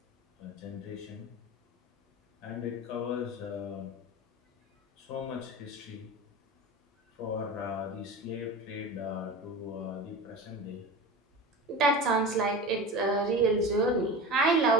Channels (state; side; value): normal; both; correlation 0.31